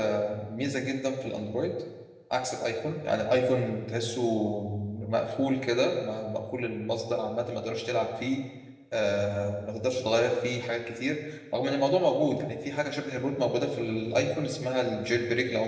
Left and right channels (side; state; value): both; identical; correlation 1.00